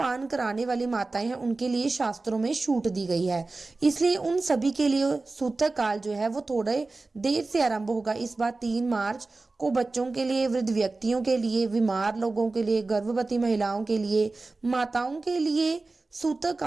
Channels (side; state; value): left; quieter; 3.5 dB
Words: कराने वाली माताएं हैं, उनके लिए शास्त्रों में छूट दी गई है। इसलिए उन सभी के लिए सूतक काल जो है वो थोड़े देर से आरंभ होगा। इस बार 3 मार्च को बच्चों के लिए, वृद्ध व्यक्तियों के लिए, बीमार लोगों के लिए, गर्भवती महिलाओं के लिए, माताओं के लिए सूतक